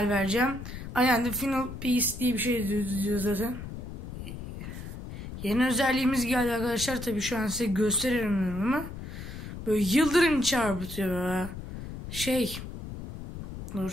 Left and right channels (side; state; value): left; noise; rumble, 10 dB below the sound